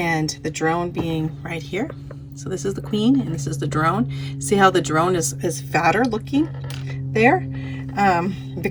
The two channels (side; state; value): both; identical; correlation 1.00